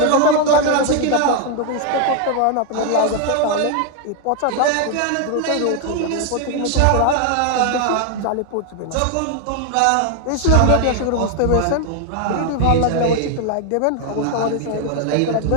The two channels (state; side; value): different; both; correlation 0.01